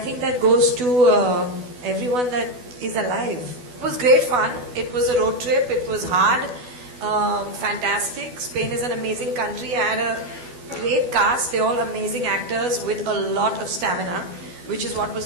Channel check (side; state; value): left; late; 12 ms